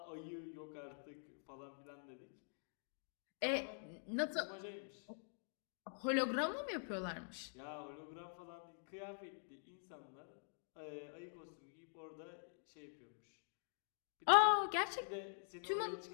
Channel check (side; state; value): right; silent; digital silence